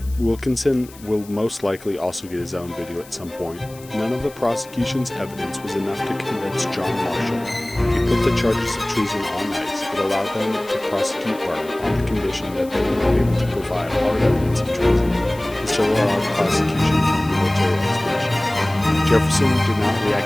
Wilkinson will most likely also get his own video at some point. None of the prosecution's evidence was enough to convince John Marshall. He put the charges of treason on ice, but allowed them to prosecute Burr on the condition that they were able to provide hard evidence of treason, and still allowed prosecution from the military expedition. Jefferson did not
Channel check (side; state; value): left; noise; hiss, 21 dB below the sound